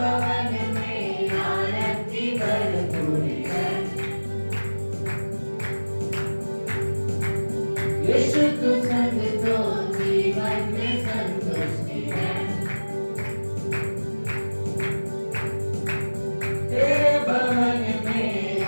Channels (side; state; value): both; inverted; correlation -1.00